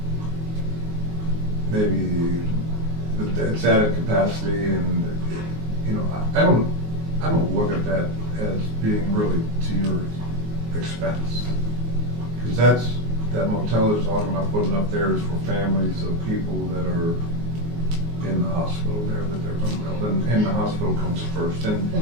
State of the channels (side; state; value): left; late; 19 ms